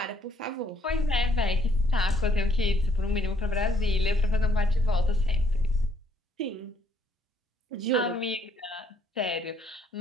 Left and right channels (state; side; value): normal; both; correlation 0.68